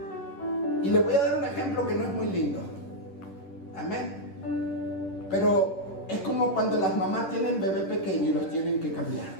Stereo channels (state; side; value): late; right; 10 ms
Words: Y le voy a dar un ejemplo que no es muy lindo. Amén. Pero es como cuando las mamás tienen bebé pequeño y los tienen que cambiar.